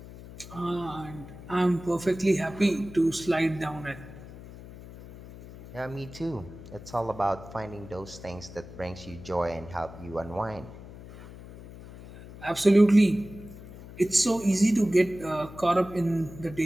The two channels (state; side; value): noise; left; hum, 16 dB below the sound